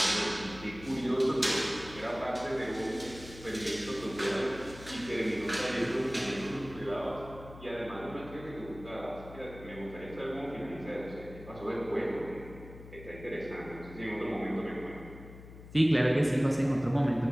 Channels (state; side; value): noise; left; hum, 16 dB below the sound